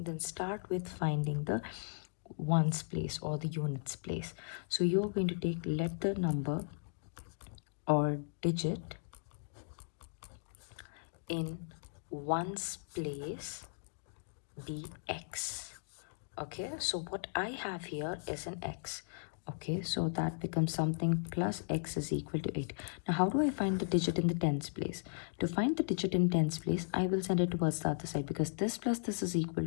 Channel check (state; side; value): silent; right; digital silence